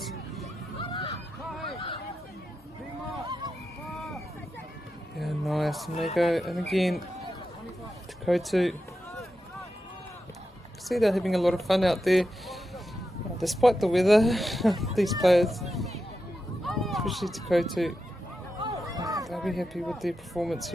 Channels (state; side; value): normal; both; correlation 0.89